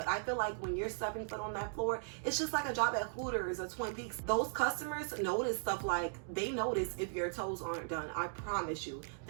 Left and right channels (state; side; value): silent; left; digital silence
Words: I feel like when you're stepping foot on that floor, it's just like a job at Hooters or Twin Peaks. Those customers notice stuff like, they notice if your toes aren't done. I promise you.